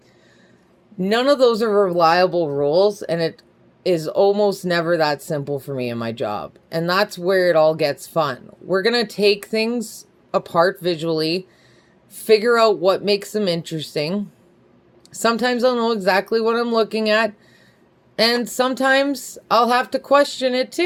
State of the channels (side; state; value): both; identical; correlation 1.00